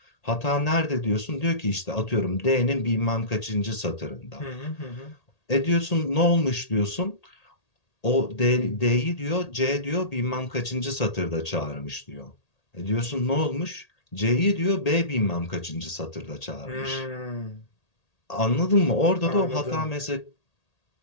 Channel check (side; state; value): right; late; 1.8 ms